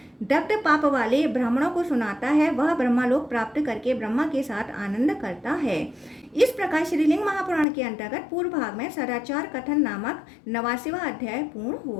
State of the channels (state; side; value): drops out; right; at 7.7 s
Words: दग्ध पाप वाले ब्राह्मणों को सुनाता है, वह ब्रह्मलोक प्राप्त करके ब्रह्मा के साथ आनंद करता है। इस प्रकार श्रीलिंग महापुराण के अंतर्गत पूर्व भाग में सदाचार कथन नामक 89वां अध्याय पूर्ण